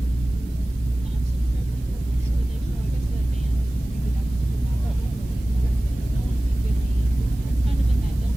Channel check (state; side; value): normal; both; correlation 0.97